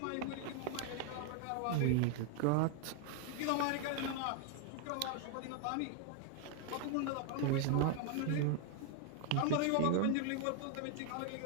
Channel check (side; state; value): both; different; correlation 0.00